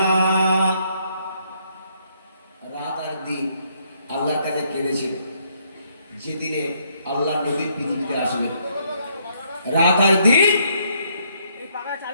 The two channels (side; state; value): both; inverted; correlation -0.70